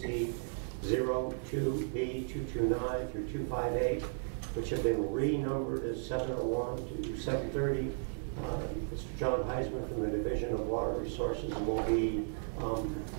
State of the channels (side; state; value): left; silent; 55 dB below the other